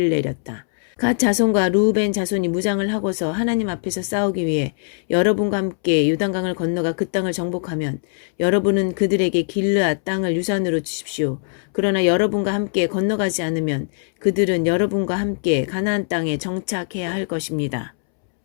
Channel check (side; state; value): right; silent; 65 dB below the other